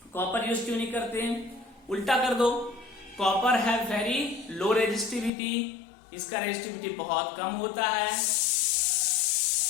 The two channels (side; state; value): right; drops out; at 5.3 s